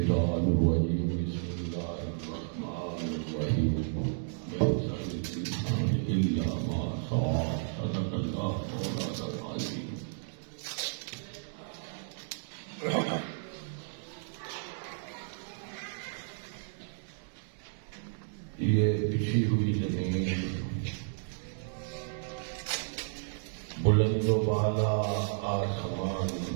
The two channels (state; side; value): silent; left; digital silence